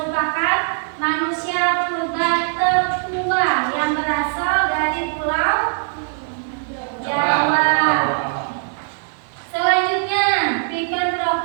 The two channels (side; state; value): left; silent; digital silence